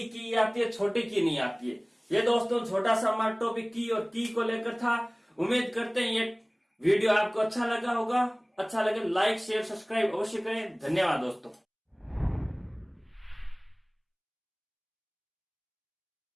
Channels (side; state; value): both; identical; correlation 1.00